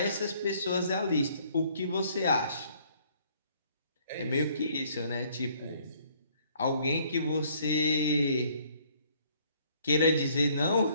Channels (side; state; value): both; inverted; correlation -0.62